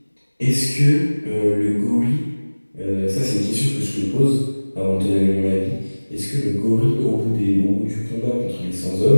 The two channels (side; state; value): both; inverted; correlation -1.00